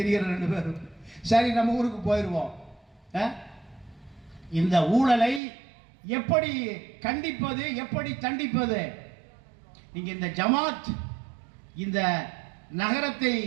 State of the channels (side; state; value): left; drops out; at 5.4 s